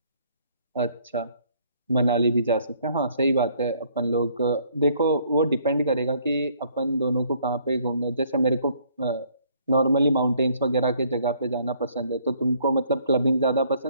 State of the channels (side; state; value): both; inverted; correlation -0.63